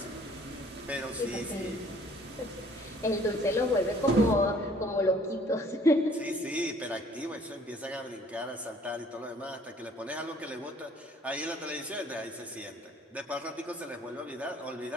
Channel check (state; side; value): normal; both; correlation 0.57